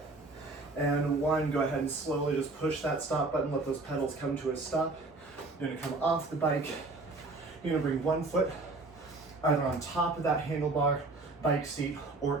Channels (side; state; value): left; quieter; 3.3 dB